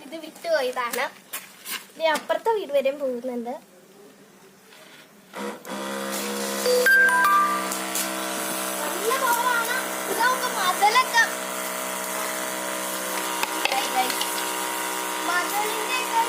ഇത് വിട്ടുപോയതാണ്. ഇത് അപ്പുറത്തെ വീട് വരെയും പോകുന്നുണ്ട്. നല്ല പവറാണ്. ഇതൊക്കെ മതിലൊക്കെ മതിലിന്റെ ഒക്കെ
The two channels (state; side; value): identical; both; correlation 1.00